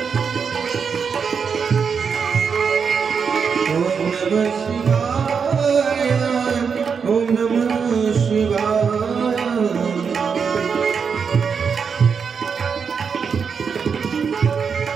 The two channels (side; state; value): left; quieter; 6.1 dB